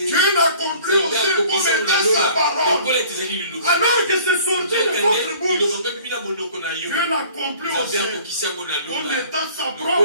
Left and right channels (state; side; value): inverted; both; correlation -0.51